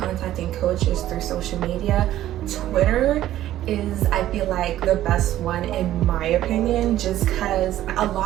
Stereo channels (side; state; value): left; quieter; 13.3 dB